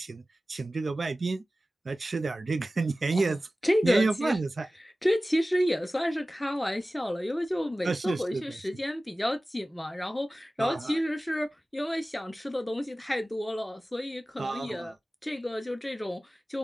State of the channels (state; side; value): normal; both; correlation 0.96